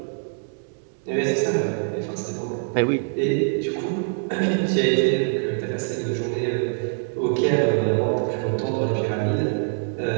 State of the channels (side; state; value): left; silent; 63 dB below the other